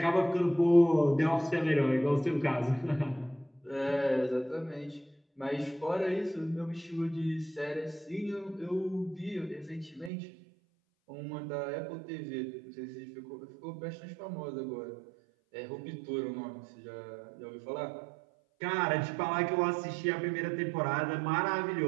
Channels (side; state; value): left; drops out; at 10.1 s